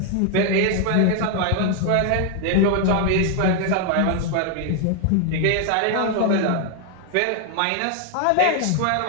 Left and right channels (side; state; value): both; different; correlation 0.00